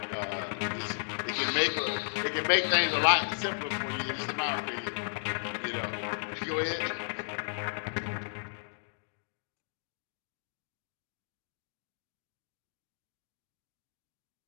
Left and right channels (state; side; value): silent; right; digital silence